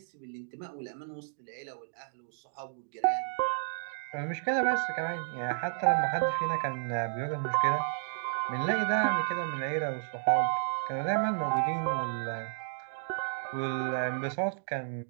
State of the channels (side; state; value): left; silent; digital silence